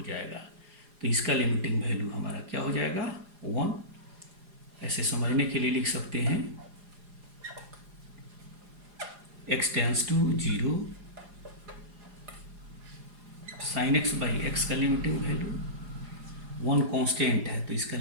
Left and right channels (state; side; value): late; left; 4.9 ms